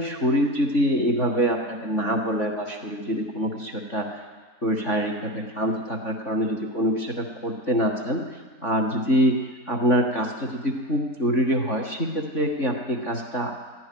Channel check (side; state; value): right; late; 3.5 ms